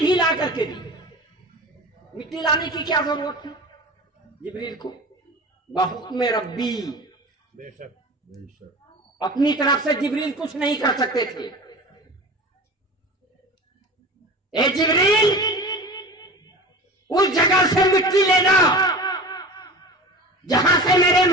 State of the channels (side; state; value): both; normal; correlation 0.34